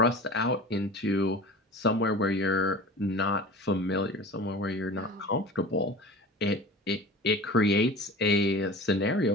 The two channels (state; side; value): normal; both; correlation 0.36